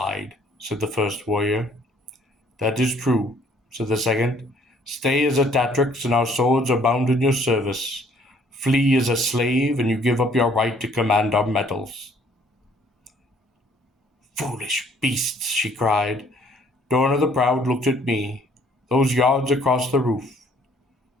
said the first warrior. That is true, said the second. Stay as a Tatrix, and our swords are bound in your service. Flee as a slave, and you give up your right to command our metals. Foolish beasts, she cried. Dorna the Proud looked at me, those yards across the roof.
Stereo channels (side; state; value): both; normal; correlation 0.61